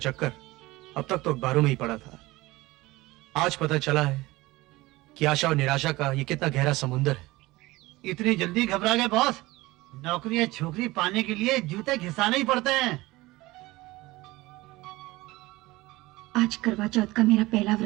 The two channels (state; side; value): quieter; left; 20.0 dB